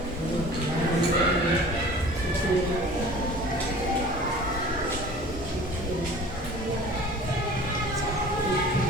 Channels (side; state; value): both; normal; correlation 0.43